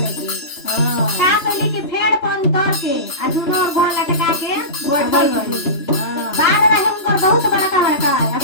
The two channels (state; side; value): late; right; 3.0 ms